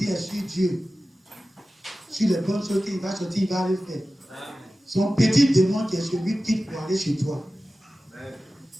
est sur Dieu. Sur les bonnes choses qu'il va sortir, il va aller faire. Son petit démon qui est celui qui pour aller chez toi.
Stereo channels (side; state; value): both; normal; correlation 0.95